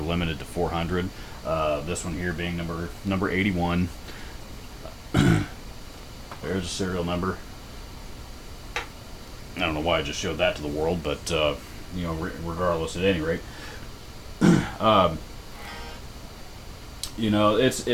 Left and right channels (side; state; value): both; identical; correlation 1.00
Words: limited to 400. This one here being number 81. There's a serial number. I don't know why I just showed that to the world, but regardless, at any rate, um,